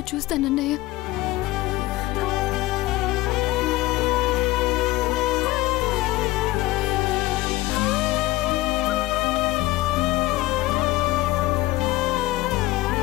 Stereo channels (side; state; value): right; quieter; 18.2 dB